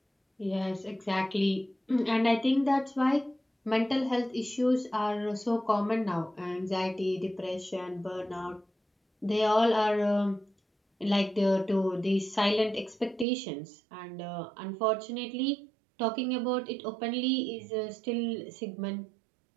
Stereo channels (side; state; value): left; drops out; at 13.2 s